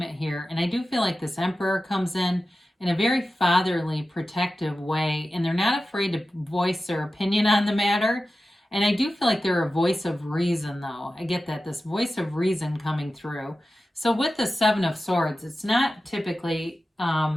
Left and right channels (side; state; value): both; normal; correlation 0.94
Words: here, and I do feel like this Emperor comes in a very fatherly, protective way, and they're not afraid to voice their opinion on the matter. And I do feel like they're a voice of reason, though. I get that, this voice of reason coming through. So with the Seven of Swords, it's not typically,